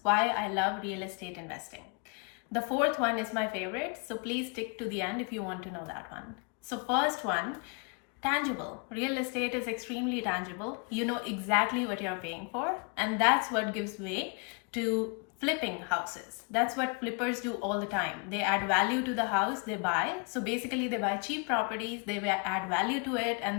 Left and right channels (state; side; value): quieter; right; 34.2 dB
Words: why I love real estate investing. The fourth one is my favorite, so please stick to the end if you want to know that one. So first one, tangible. Real estate is extremely tangible. You know exactly what you're paying for, and that's what gives way to flipping houses. That's what flippers do all the time. They add value to the house they buy. So basically they buy cheap properties, they add value to it,